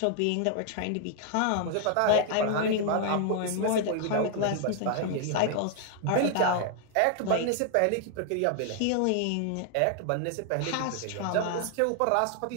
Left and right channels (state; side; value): different; both; correlation 0.00